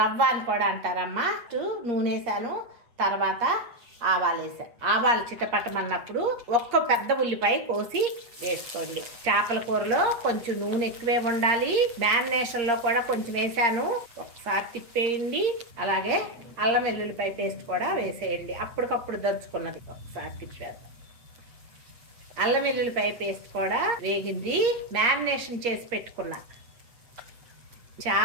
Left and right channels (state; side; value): late; left; 8.5 ms